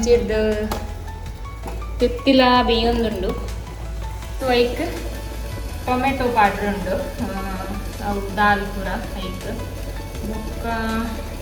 ತುತ್ತಿಲ ಬೇಯೊಂದುಂಡು. ಸೊ ಐಕ್ ಟೊಮೆಟೊ ಪಾಡ್ರ್ ಉಂಡು, ಅವು ದಾಲ್ ಪೂರ ಐಕ್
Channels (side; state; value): both; identical; correlation 1.00